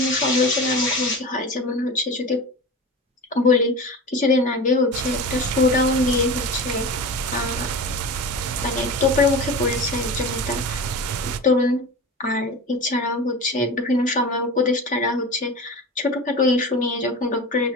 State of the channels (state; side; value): normal; both; correlation 0.30